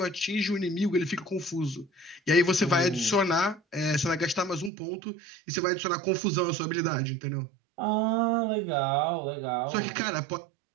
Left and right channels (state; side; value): drops out; left; at 4.7 s